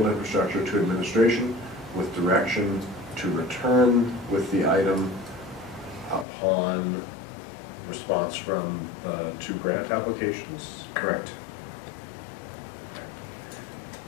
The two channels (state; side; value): drops out; right; at 6.2 s